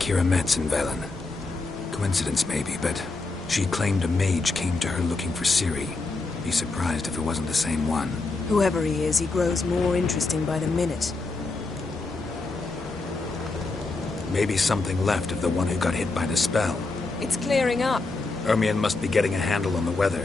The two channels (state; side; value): quieter; right; 3.5 dB